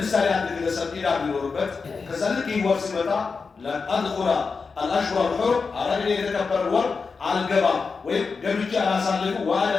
አንድ ግለሰብ ኢዳ ቢኖርበት ከዛ ልክ ይወር ሲመጣ ለአድኹላ አልአሽሁር አልሑሩም አረግኔ የተከበረ ወር አልገባም ወይም ገብቼ አላሳልፉ ዋለ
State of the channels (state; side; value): quieter; right; 4.9 dB